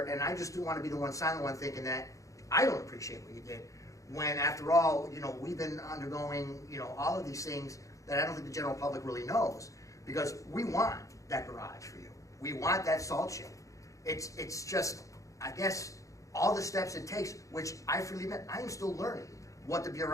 and I just do want to be the one silent one thinking that I don't appreciate what you did, when after all, we've been undergoing, all of these things that I don't think the general public really knows, because we want that garage for you. We want that salt shed. It's just, I guess, all the steps it takes, which I freely admit, I am still learning what the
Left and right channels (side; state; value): right; late; 0.16 ms